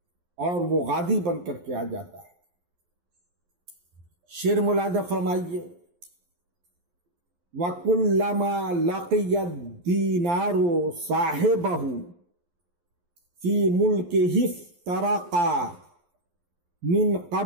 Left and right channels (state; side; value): late; left; 11 ms